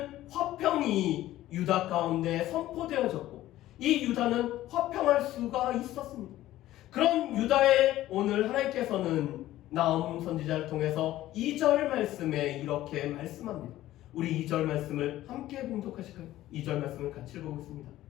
화평이 유다 가운데 선포되어졌고 이 유다는 화평할 수가 있었습니다. 그런 유다에 오늘 하나님께서는 나훔 선지자를 통해서 2절 말씀에 이렇게 말씀합니다. 우리 2절 말씀을 함께 봉독하실까요? 2절 말씀을 같이 읽어보겠습니다.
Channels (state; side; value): quieter; right; 14.8 dB